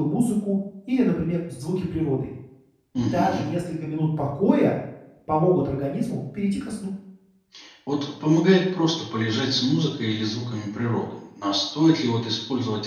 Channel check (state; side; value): identical; both; correlation 1.00